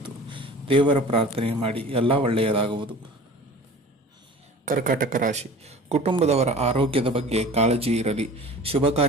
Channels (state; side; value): normal; both; correlation 0.41